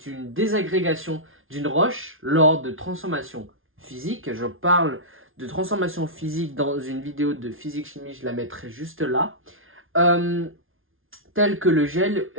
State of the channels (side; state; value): left; late; 0.59 ms